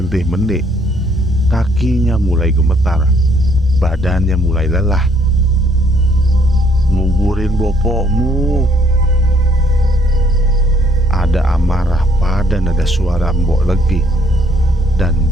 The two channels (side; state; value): both; normal; correlation 0.65